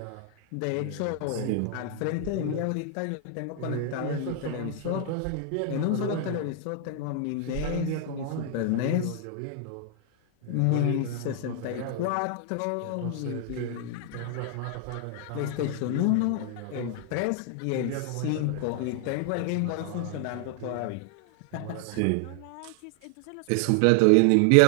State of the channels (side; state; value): both; different; correlation 0.00